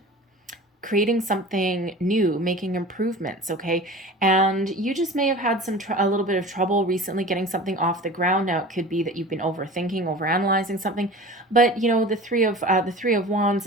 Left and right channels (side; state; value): both; normal; correlation 0.38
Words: creating something new, making improvements, okay? And you just may have had a little bit of trouble recently getting something off the ground. Now, it could be that you've been overthinking, overanalyzing something, but the 3 of Wands